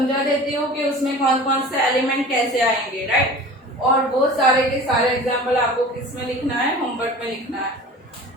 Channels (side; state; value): both; normal; correlation 0.40